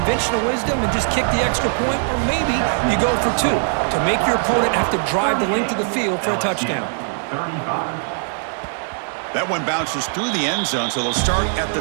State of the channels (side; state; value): left; silent; digital silence